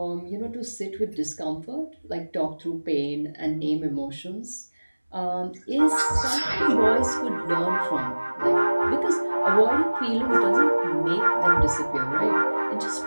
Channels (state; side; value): inverted; both; correlation -1.00